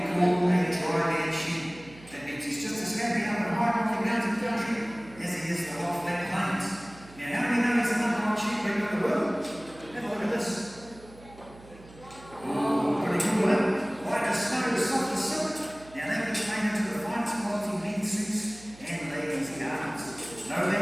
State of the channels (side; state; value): right; noise; hum, 21 dB below the sound